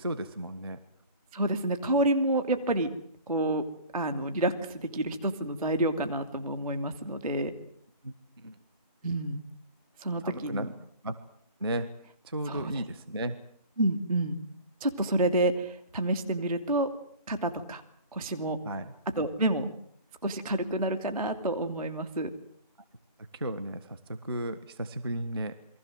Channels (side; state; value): both; inverted; correlation -0.42